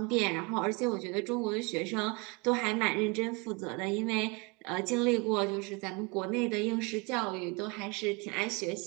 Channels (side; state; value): left; quieter; 29.2 dB